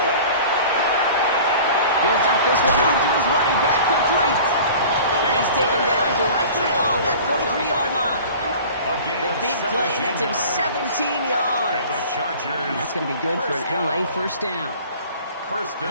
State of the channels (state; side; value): inverted; both; correlation -0.42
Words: He'll dump this one off to his running back, complete. And he's taken down directly on that 43-yard line. The big play nets him 17 yards. And that's going to be good for an LA first down.